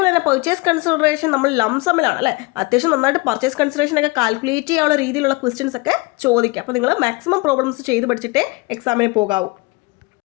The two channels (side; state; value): right; quieter; 24.7 dB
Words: തന്നെ പർച്ചേസ് കൺസിഡറേഷൻ നമ്മൾ ലംസമിലാണ് അല്ലേ, അത്യാവശ്യം നന്നായിട്ട് പർച്ചേസ് കൺസിഡറേഷൻ ഒക്കെ കാൽക്കുലേറ്റ് ചെയ്യാനുള്ള രീതിയിലുള്ള ക്വസ്റ്റ്യൻസ് ഒക്കെ ചോദിക്കാം. അപ്പോൾ നിങ്ങൾ മാക്സിമം പ്രോബ്ലംസ് ചെയ്ത് പഠിച്ചിട്ടേ എക്സാമിന് പോകാവൂ.